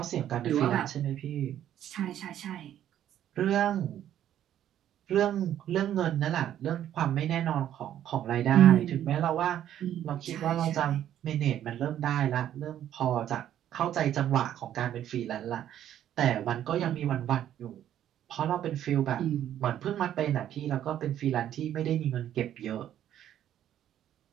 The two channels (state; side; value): quieter; left; 11.1 dB